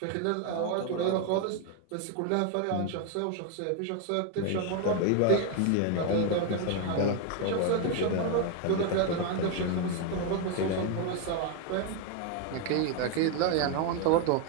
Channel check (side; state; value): both; different; correlation 0.01